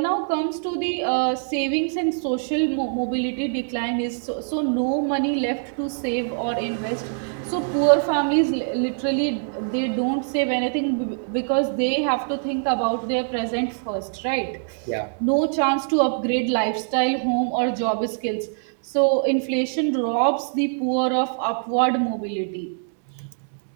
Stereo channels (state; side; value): silent; left; digital silence